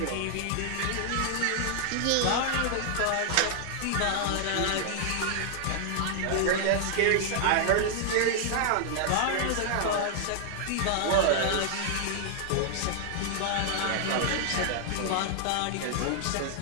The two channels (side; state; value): both; different; correlation 0.00